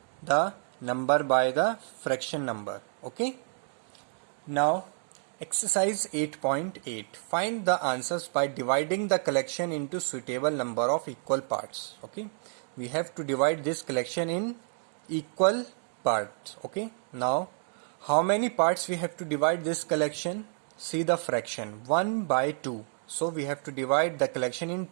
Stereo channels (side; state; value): left; silent; 58 dB below the other